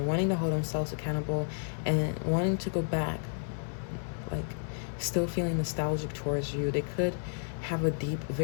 wanting to hold themselves accountable and wanting to go back, like still feeling nostalgic towards you. They could have a deep,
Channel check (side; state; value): right; silent; 57 dB below the other